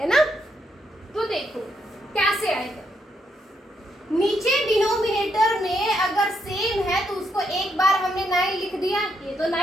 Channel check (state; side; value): normal; both; correlation 0.77